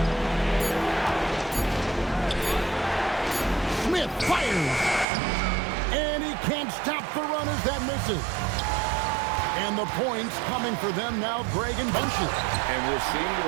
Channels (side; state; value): left; drops out; at 5.1 s